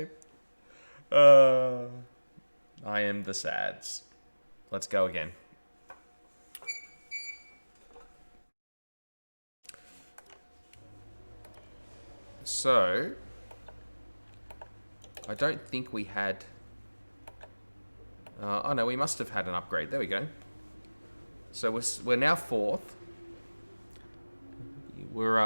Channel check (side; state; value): both; inverted; correlation -1.00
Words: I am the sads. Let's go again. So, I don't think we had... oh no, we must have had an upgrade. There we go. So we're now fourth.